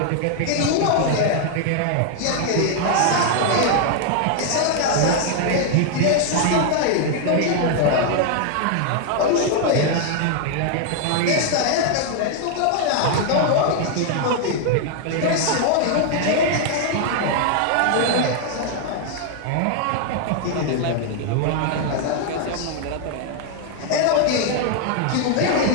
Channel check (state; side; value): different; both; correlation 0.00